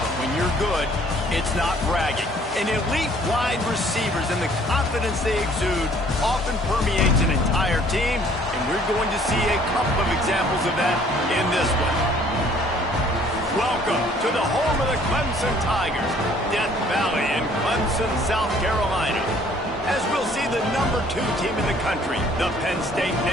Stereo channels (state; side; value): normal; both; correlation 0.58